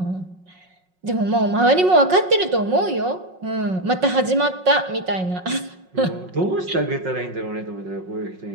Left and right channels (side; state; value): left; late; 5.5 ms